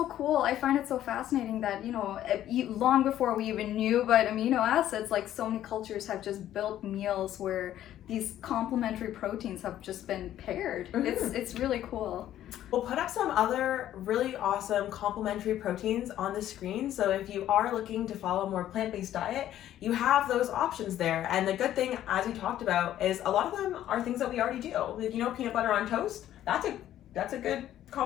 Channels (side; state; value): right; quieter; 12.2 dB